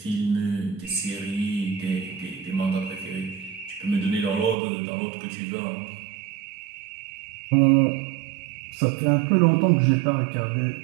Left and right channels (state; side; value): drops out; left; at 4.5 s